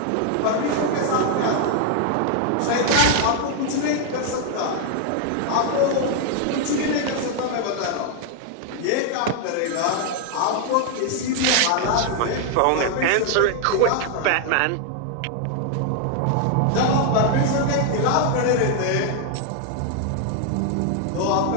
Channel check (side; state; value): both; different; correlation 0.00